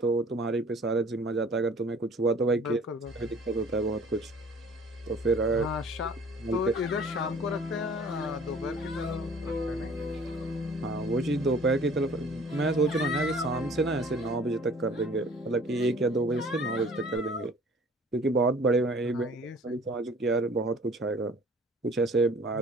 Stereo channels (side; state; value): both; normal; correlation 0.51